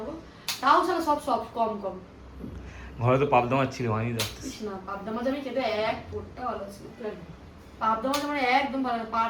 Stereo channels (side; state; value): both; identical; correlation 1.00